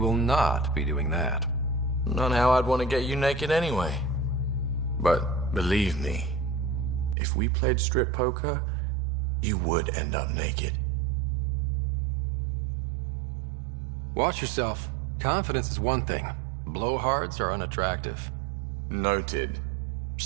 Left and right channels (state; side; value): drops out; left; at 7.2 s